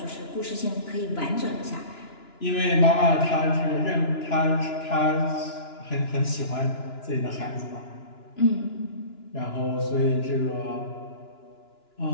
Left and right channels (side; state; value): right; late; 2.9 ms